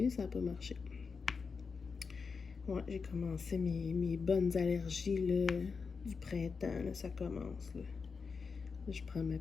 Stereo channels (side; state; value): right; quieter; 5.2 dB